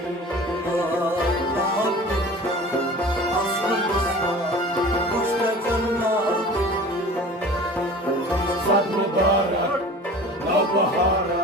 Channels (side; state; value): both; normal; correlation 0.40